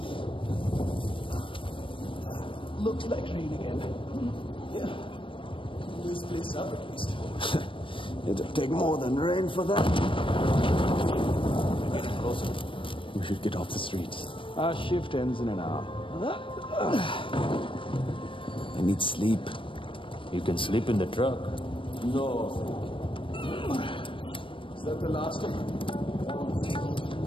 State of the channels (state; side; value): late; right; 0.25 ms